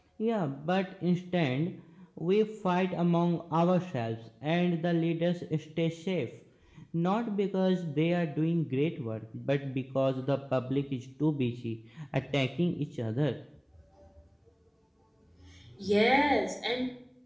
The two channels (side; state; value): both; identical; correlation 1.00